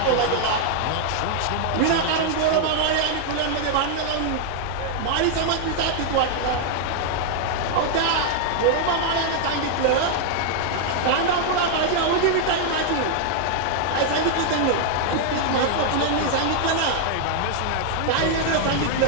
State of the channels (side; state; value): both; different; correlation 0.00